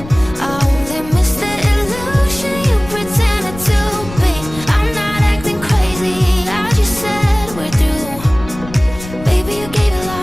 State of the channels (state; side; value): noise; left; rumble, 14 dB below the sound